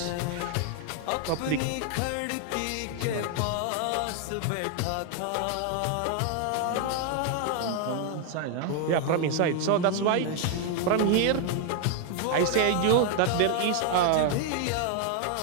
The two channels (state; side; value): different; both; correlation 0.00